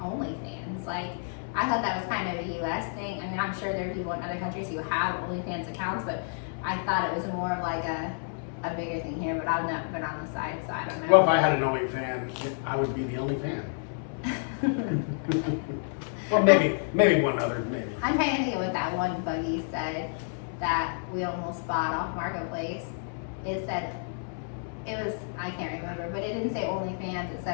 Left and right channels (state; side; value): silent; right; 58 dB below the other